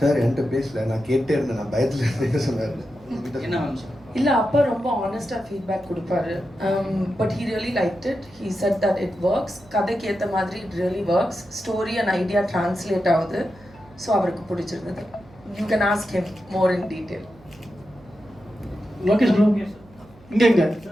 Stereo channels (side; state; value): right; noise; hum, 25 dB below the sound